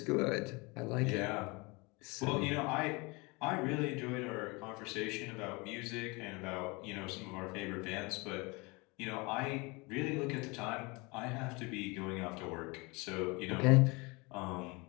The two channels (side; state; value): right; quieter; 26.8 dB